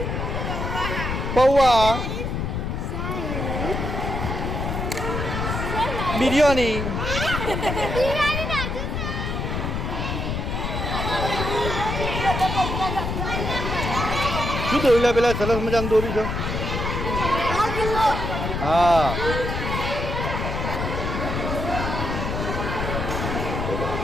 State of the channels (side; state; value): left; noise; rumble, 2 dB below the sound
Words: પૌવા બિરયાની શું દોરી પેલા સરસ મજાનું દોરી છે હા